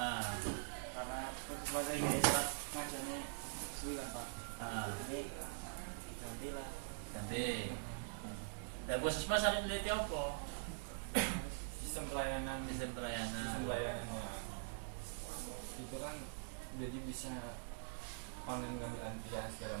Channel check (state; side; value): silent; left; digital silence